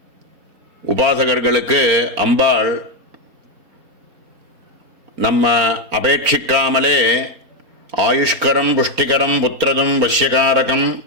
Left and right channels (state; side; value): late; left; 4.2 ms